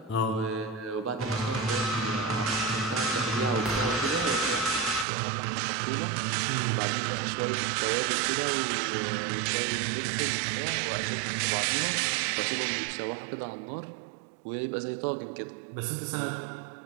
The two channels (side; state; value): left; drops out; at 5.1 s